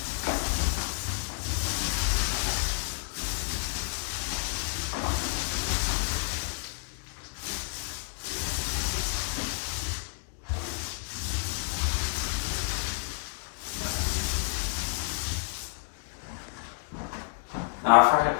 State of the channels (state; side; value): silent; right; 58 dB below the other